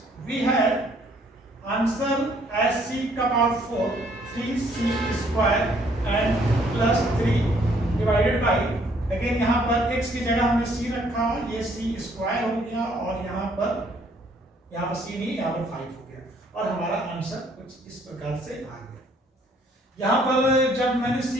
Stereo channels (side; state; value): both; normal; correlation 0.64